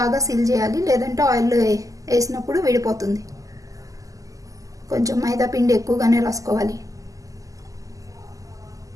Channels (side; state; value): left; late; 0.17 ms